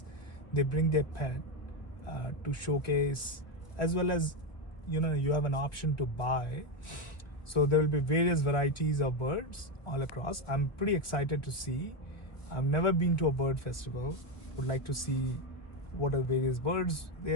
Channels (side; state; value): right; late; 1.0 ms